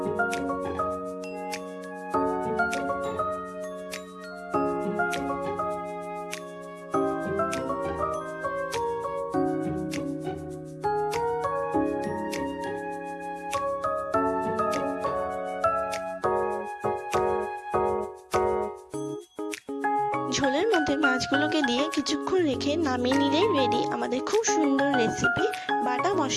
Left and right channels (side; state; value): both; identical; correlation 1.00